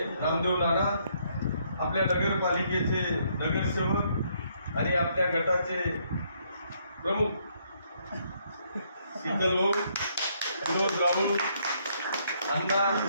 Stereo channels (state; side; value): inverted; both; correlation -0.70